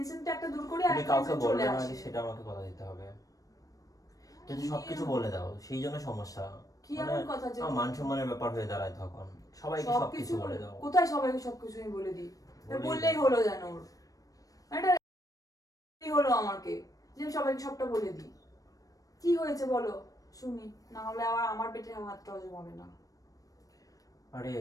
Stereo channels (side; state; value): right; late; 0.17 ms